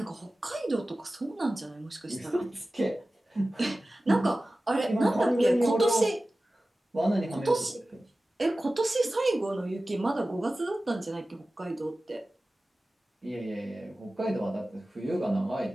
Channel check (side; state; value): both; normal; correlation 0.96